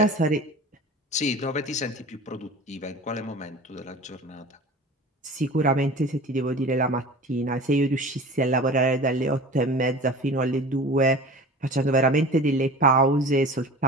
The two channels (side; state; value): both; normal; correlation 0.38